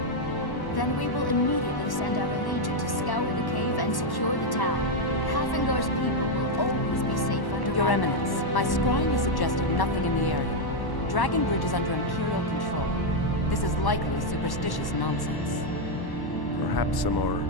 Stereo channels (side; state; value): right; late; 1.1 ms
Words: Then we will immediately send out a legion to scour the cave and secure the town. Hafingar's people will always be safe under Your my Eminence, my scrying is suggesting nothing in the area. Dragon Bridge is under Imperial control. This is likely superstitious nonsense. Perhaps a more